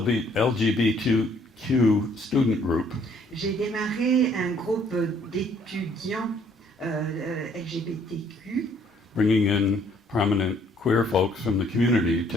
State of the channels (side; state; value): both; normal; correlation 0.63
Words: LGBTQ student group J'ai démarré un groupe d'étudiants LGBTQ bringing in prominent queer folks from the community